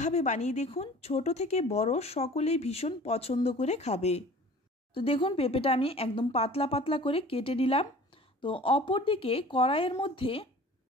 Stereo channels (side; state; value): both; normal; correlation 0.44